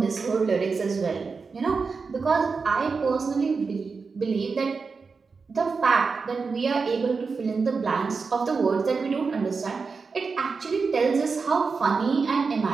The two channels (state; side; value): quieter; left; 4.8 dB